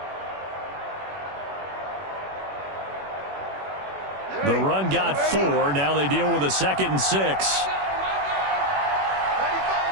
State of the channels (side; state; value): left; late; 21 ms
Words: The run got 4. Now they deal with a 2nd and 6.